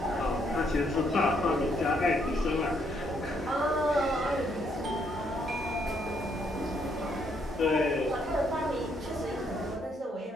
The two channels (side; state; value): both; normal; correlation 0.72